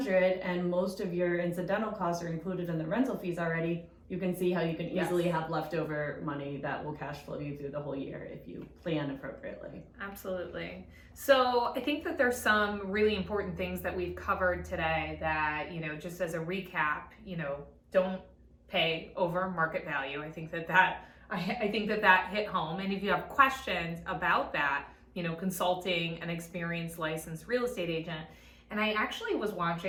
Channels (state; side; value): identical; both; correlation 1.00